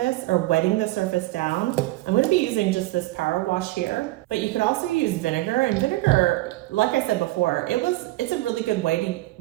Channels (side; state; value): left; quieter; 18.8 dB